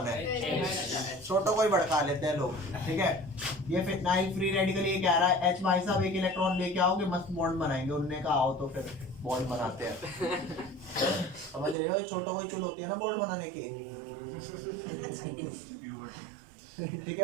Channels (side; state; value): left; drops out; at 11.8 s